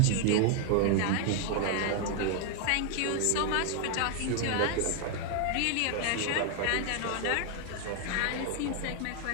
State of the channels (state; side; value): different; both; correlation 0.00